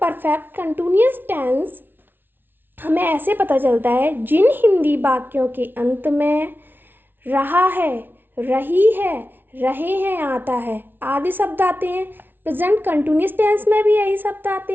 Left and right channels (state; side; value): late; left; 0.099 ms